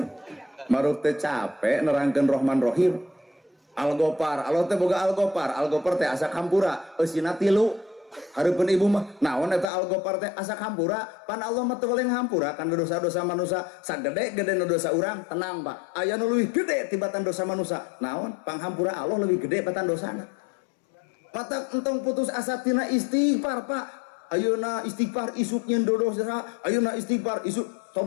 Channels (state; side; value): drops out; right; at 9.7 s